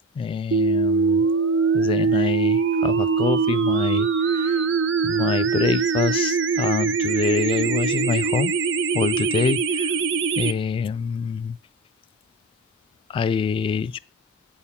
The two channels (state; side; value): normal; both; correlation 0.26